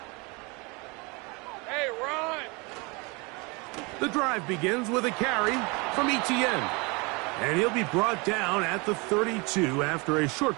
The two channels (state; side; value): quieter; left; 28.2 dB